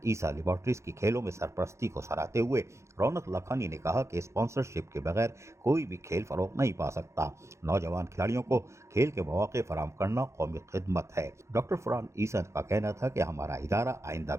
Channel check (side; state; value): left; late; 0.14 ms